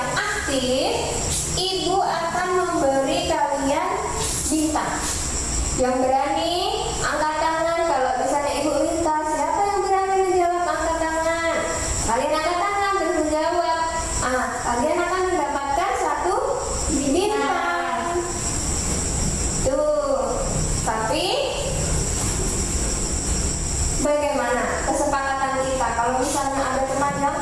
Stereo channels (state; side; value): identical; both; correlation 1.00